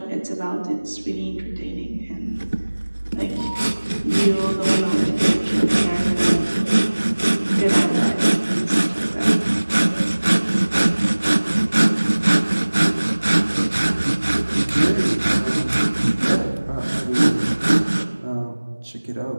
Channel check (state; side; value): inverted; both; correlation -1.00